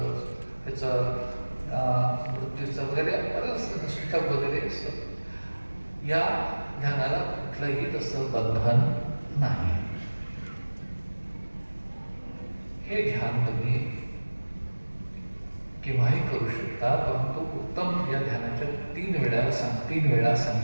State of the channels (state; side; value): inverted; both; correlation -1.00